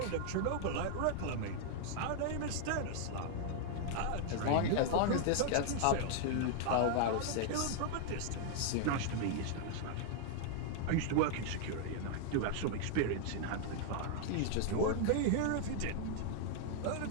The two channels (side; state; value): both; different; correlation 0.00